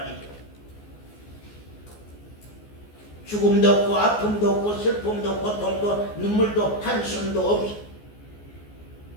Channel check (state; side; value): late; right; 14 ms